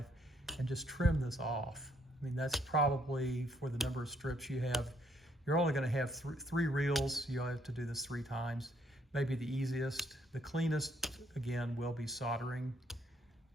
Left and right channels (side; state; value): both; normal; correlation 0.69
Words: and just trim this off. I mean, that's probably, for the number of strips you have, you're only going to have three reels. You'll have to do this 3 times. Maybe the easiest. The cleanest, again, will be soldering